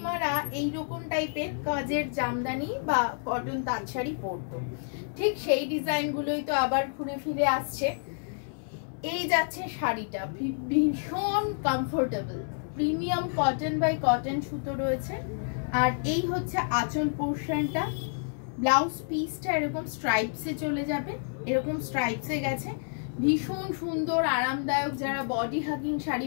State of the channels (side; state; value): right; silent; 58 dB below the other